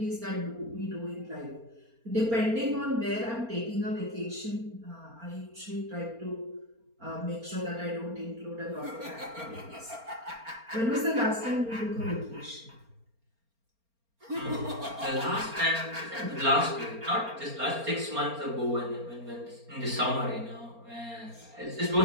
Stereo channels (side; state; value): left; late; 4.3 ms